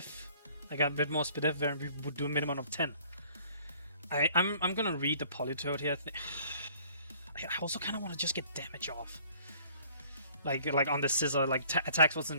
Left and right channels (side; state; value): both; inverted; correlation -0.56